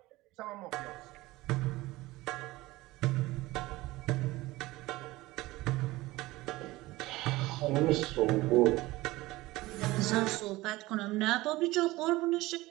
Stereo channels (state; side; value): quieter; left; 19.2 dB